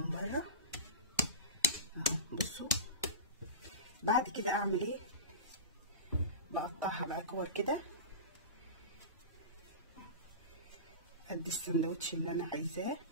بره. اهو بصوا. بعد كده اعمل ايه؟ بقطعها بقى كور كده قد السندوتش اللي انا عايزاه،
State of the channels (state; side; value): inverted; both; correlation -0.30